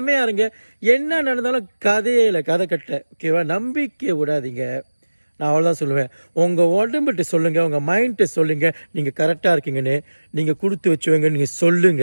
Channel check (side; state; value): both; inverted; correlation -1.00